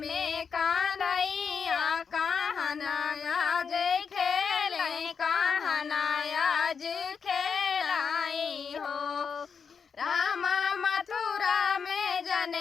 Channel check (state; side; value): quieter; right; 6.2 dB